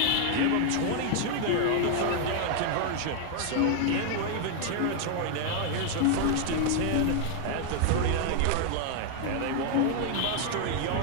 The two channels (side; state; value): both; different; correlation 0.00